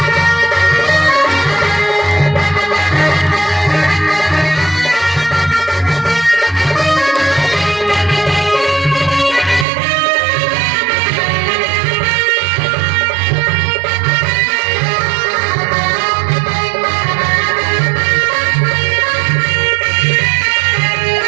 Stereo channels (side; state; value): left; drops out; at 9.7 s